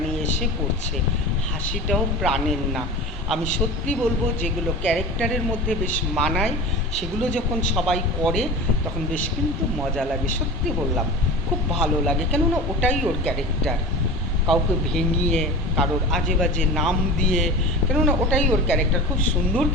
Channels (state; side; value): normal; both; correlation 0.33